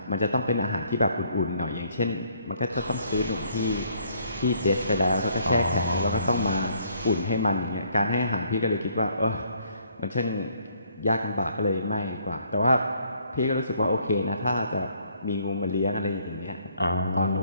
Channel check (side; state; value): both; inverted; correlation -0.65